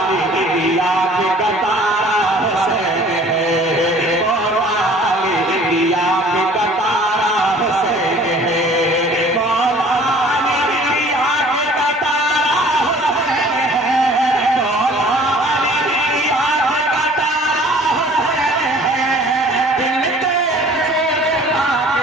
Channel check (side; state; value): both; normal; correlation 0.51